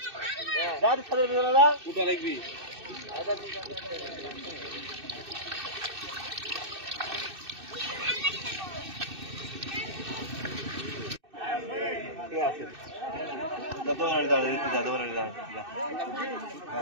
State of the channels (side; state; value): left; late; 2.6 ms